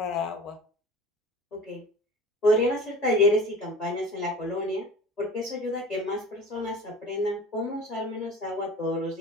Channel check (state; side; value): normal; both; correlation 0.39